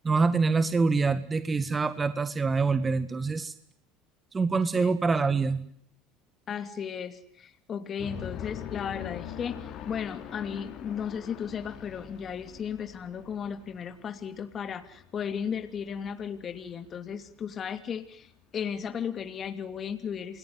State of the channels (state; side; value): normal; both; correlation 0.82